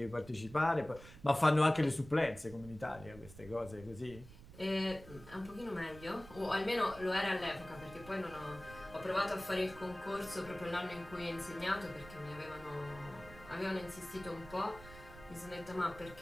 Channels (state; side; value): noise; right; rumble, 17 dB below the sound